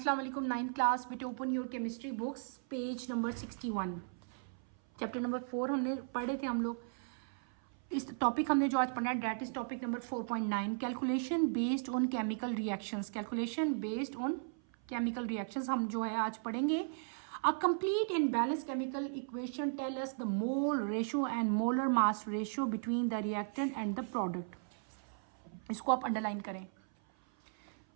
वालेकुम। 9th class बेटे, open your chemistry books, page number 61, chapter number 4 हमने पढ़े थे हम लोग। इस टॉपिक हमने जो आज पढ़ना है that is topic number 4.9, calculation based on chemical reactions. Calculation based on chemical reactions हम जो है आज पढ़ेंगे। A complete and balance chemical equation tell us the mole ratio and molar mass ratio between the reactant and the product. इसको आप underline करें।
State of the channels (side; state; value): left; silent; 53 dB below the other